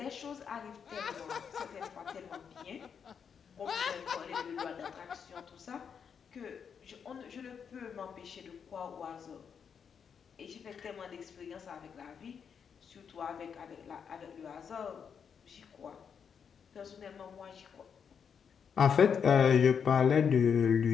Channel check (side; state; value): right; quieter; 7.0 dB